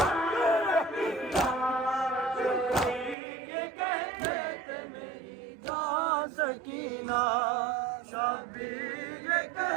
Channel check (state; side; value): drops out; left; at 3.2 s